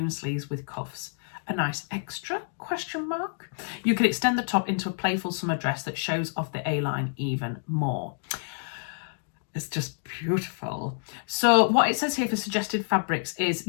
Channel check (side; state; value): right; silent; digital silence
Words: sleeves with cuffs. A nice extra, question mark. You can extend the top into a playful summer dress that shows off the A-line even more. It's just beautiful. So what it says here for suggested fabrics is